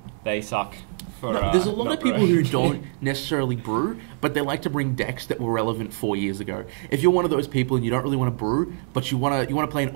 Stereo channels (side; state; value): left; silent; 56 dB below the other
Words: they suck. There's a lot of people who don't necessarily brew, but they like to bring decks that were relevant 4 years ago. If you're one of those people and you don't really want to brew, but you want to play an